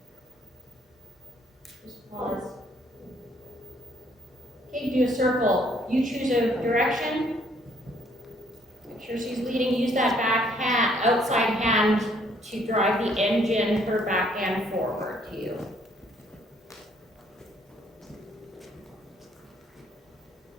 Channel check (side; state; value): both; normal; correlation 0.65